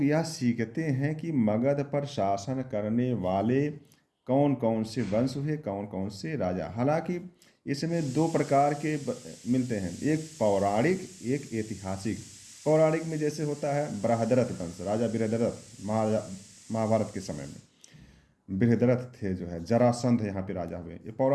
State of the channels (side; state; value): both; identical; correlation 1.00